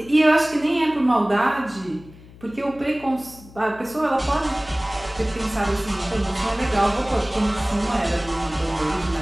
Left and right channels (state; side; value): noise; left; hum, 21 dB below the sound